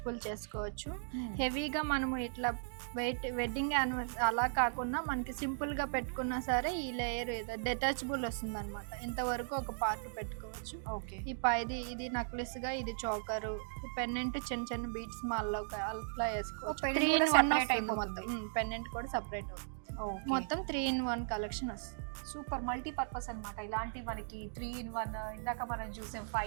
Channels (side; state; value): left; silent; digital silence